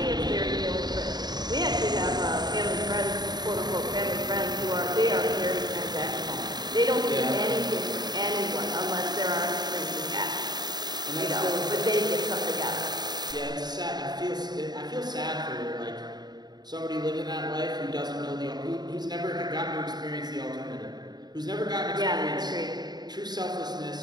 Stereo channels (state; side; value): late; left; 0.20 ms